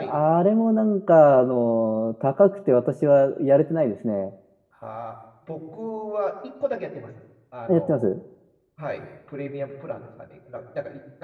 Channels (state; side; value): identical; both; correlation 1.00